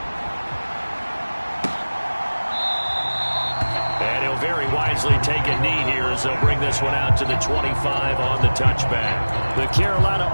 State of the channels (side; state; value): both; inverted; correlation -1.00